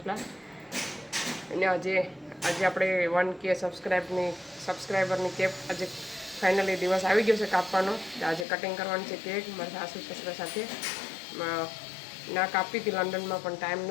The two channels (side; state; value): right; drops out; at 8.5 s